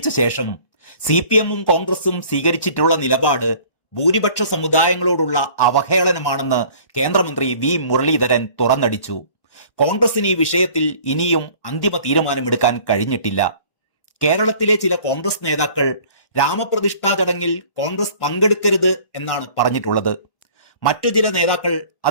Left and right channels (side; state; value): right; late; 1.1 ms